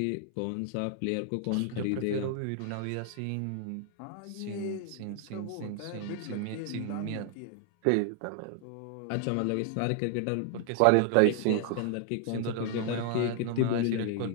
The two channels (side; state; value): both; different; correlation 0.00